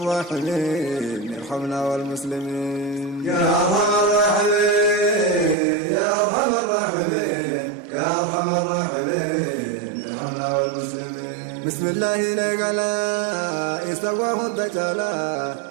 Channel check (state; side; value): drops out; left; at 5.6 s